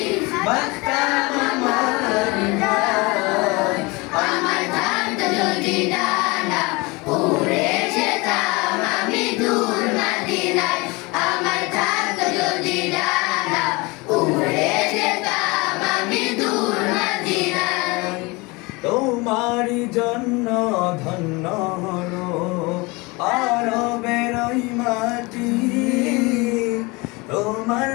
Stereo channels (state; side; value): quieter; right; 25.4 dB